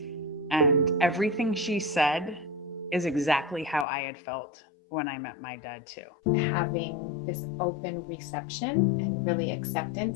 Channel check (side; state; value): right; drops out; at 3.9 s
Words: and everything she said is exactly how I had felt when I met my dad too. Having this open reception and really